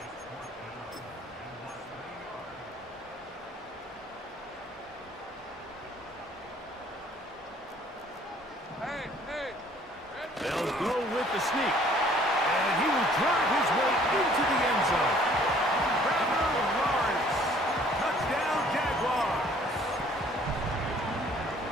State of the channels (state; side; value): normal; both; correlation 0.57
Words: Hey, hey! They'll go with the sneak. And he will drive his way into the end zone. Trevor Lawrence. Touchdown, Jaguars.